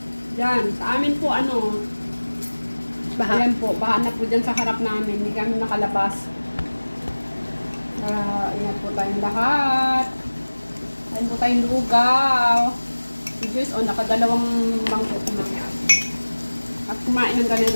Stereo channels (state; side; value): inverted; both; correlation -1.00